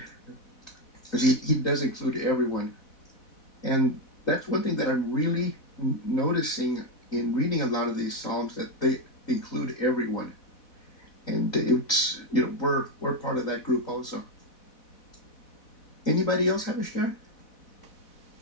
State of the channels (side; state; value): right; late; 4.1 ms